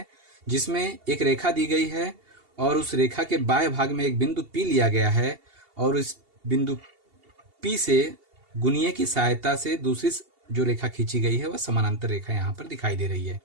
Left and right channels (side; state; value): left; late; 2.8 ms